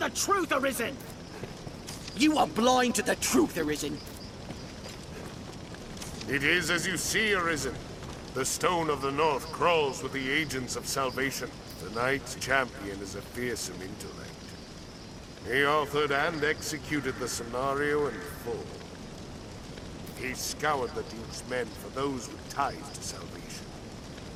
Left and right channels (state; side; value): identical; both; correlation 1.00